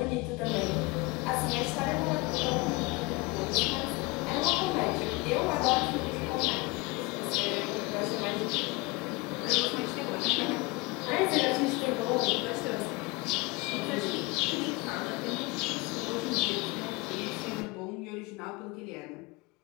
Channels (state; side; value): quieter; right; 25.0 dB